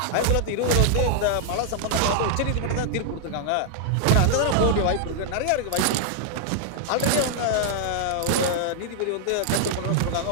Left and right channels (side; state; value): both; different; correlation -0.01